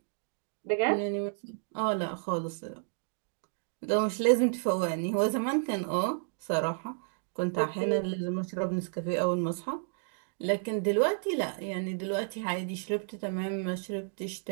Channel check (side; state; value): left; silent; digital silence